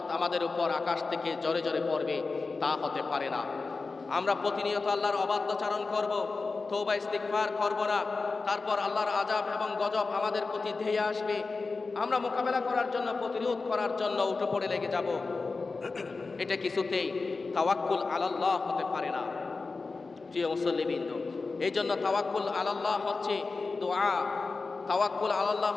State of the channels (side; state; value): right; quieter; 4.0 dB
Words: আমাদের উপর আকাশ থেকে জোরে জোরে পড়বে, তা হতে পারে না। আমরা প্রতিনিয়ত আল্লাহর অবাধ্যচারণ করব, তওবা ইস্তিগফার করব না, তারপর আল্লাহর আযাব এবং গজব আমাদের প্রতি ধেয়ে আসবে। আমরা মোকাবেলা করার জন্য, প্রতিরোধ করার জন্য উঠে পড়ে লেগে যাব। এটা কিছুতেই তাওয়াক্কুল আলাল্লাহ হতে পারে না। প্রিয় মুসল্লিবৃন্দ, এই জন্য তাওয়াক্কুল আলাল্লাহ হচ্ছে দোয়া, তাওয়াক্কুল আলাল্লাহ